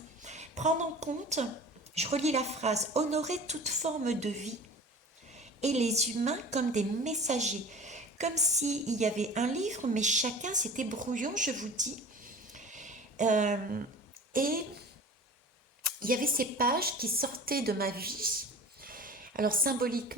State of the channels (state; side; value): normal; both; correlation 0.39